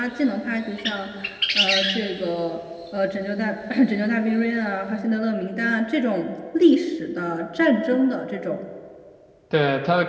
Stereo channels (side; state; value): both; identical; correlation 1.00